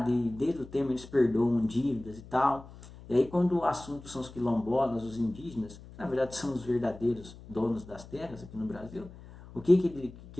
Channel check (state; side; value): noise; left; hum, 18 dB below the sound